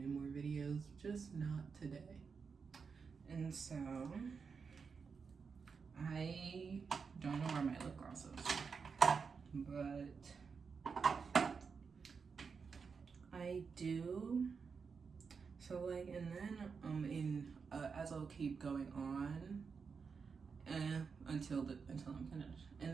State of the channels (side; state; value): left; quieter; 5.5 dB